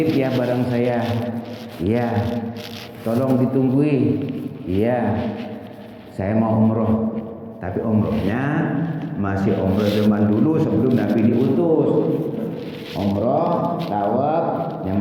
ya barang saya. Iya. Tolong ditunggui. Iya. Saya mau umroh. Tapi umrohnya masih umroh zaman dulu sebelum Nabi diutus. Umroh, tawaf,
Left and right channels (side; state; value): both; identical; correlation 1.00